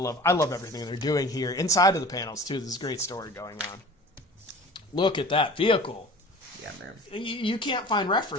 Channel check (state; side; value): normal; both; correlation 0.42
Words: everything they're doing here. Inside of the panels, too, there's a great story going on. Look at that vehicle. Yeah, man. You can't find